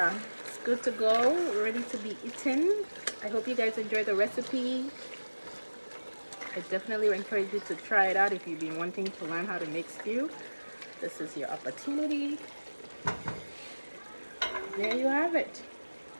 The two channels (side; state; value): both; inverted; correlation -1.00